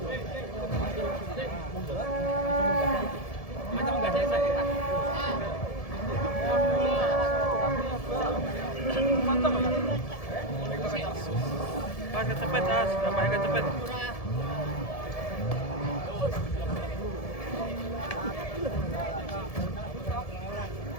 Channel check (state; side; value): late; right; 1.7 ms